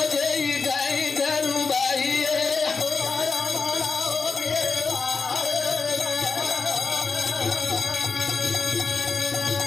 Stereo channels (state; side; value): quieter; right; 4.8 dB